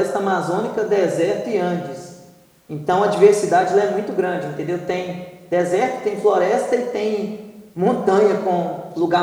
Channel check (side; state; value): both; identical; correlation 1.00